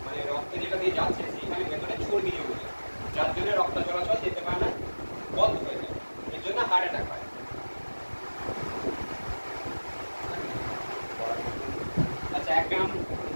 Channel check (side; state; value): both; inverted; correlation -1.00